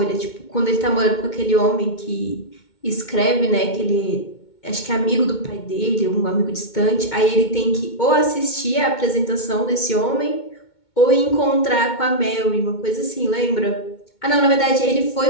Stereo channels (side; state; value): right; late; 2.2 ms